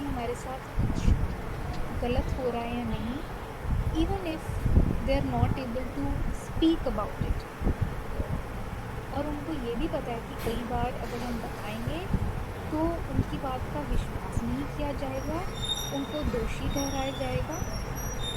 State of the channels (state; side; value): identical; both; correlation 1.00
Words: साथ कुछ गलत हो रहा है या नहीं, even if they are not able to speak about it. और उनको ये भी पता है कि कई बार अगर हम बताएंगे तो उनकी बात का विश्वास नहीं किया जाएगा, उनको दोषी ठहराया जाएगा